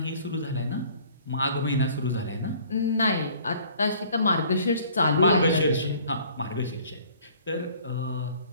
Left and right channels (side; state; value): both; inverted; correlation -0.54